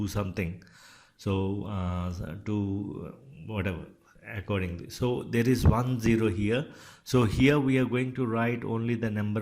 something. So to whatever accordingly. So there is 1 0 here. So here we are going to write only the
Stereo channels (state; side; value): identical; both; correlation 1.00